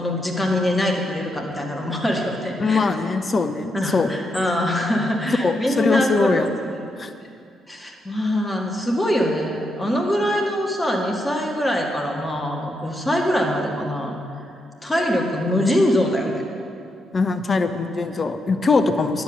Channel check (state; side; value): normal; both; correlation 0.82